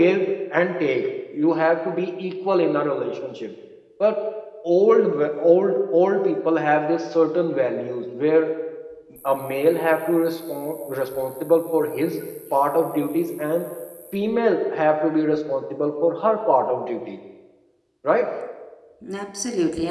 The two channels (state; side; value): identical; both; correlation 1.00